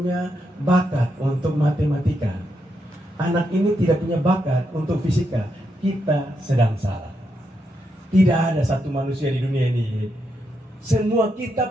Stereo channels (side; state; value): both; normal; correlation 0.82